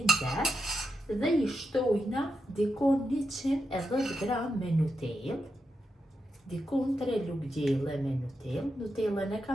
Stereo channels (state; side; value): normal; both; correlation 0.85